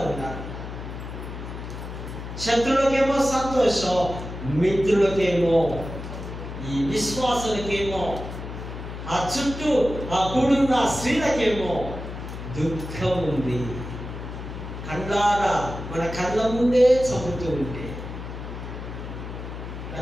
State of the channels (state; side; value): noise; left; hum, 9 dB below the sound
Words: ఉన్నారు. శత్రువులకేమో సంతోషం, మిత్రులకేమో, ఈ విశ్వాసులకేమో, ఆ చుట్టూ ఆ కూడున్న స్త్రీలకేమో దుఃఖం ఉంది. కళ్ళారా మన కళ్ళ ముందే చంపుతూ ఉంటే